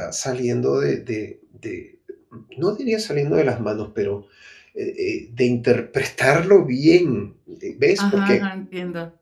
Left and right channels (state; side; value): identical; both; correlation 1.00